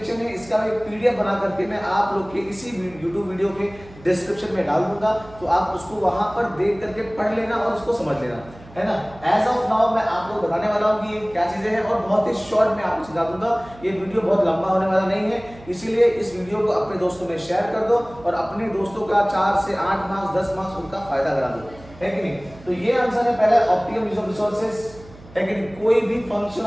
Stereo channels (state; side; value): noise; right; hum, 21 dB below the sound